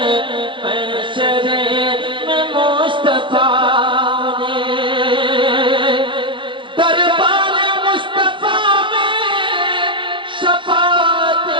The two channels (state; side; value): late; left; 0.24 ms